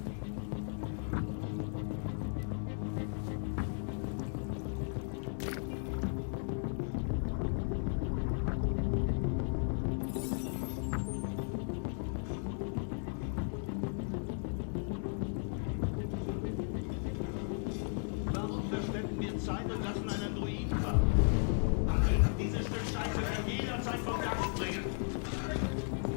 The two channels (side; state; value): right; silent; 54 dB below the other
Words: Warum verschwenden wir Zeit und lassen einen Druiden warten? Handeln, dieses Stück Scheiße kann jederzeit vom Dach springen.